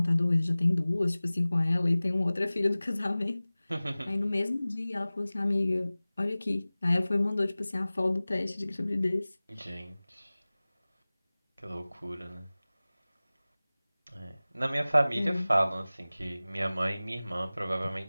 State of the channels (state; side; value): inverted; both; correlation -0.98